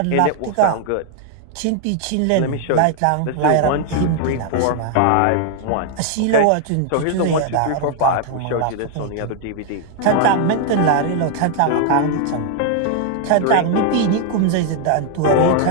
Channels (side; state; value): both; different; correlation 0.00